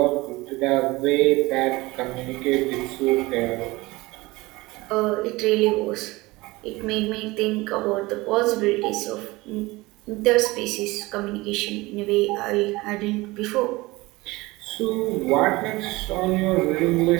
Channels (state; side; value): quieter; left; 21.4 dB